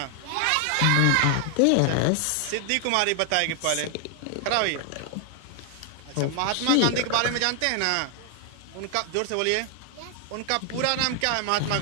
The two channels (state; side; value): different; both; correlation 0.00